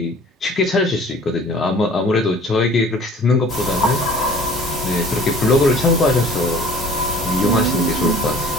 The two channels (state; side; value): normal; both; correlation 0.49